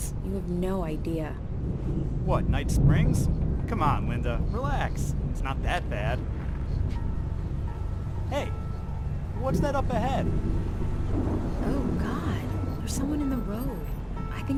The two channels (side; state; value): both; identical; correlation 1.00